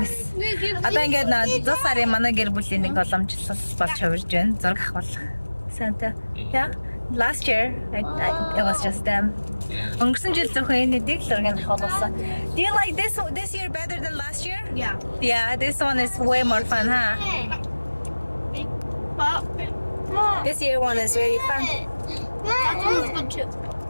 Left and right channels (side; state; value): both; inverted; correlation -1.00